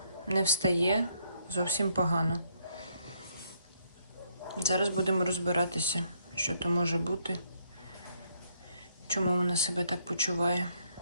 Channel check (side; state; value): both; inverted; correlation -0.72